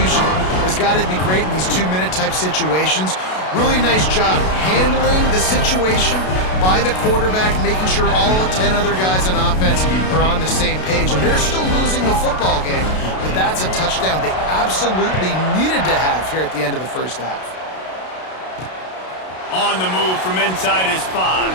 has got to be great in these 2-minute type situations. Really nice job handling the situation by the quarterback, making sure all 10 other guys on offense are on the same page. And they're still losing the football game, but that's a touchdown they absolutely needed to have here at the end of the first half. On the move from inside his 5.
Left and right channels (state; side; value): late; right; 32 ms